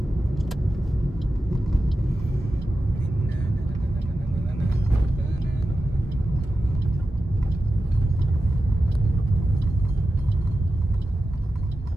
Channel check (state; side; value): normal; both; correlation 0.92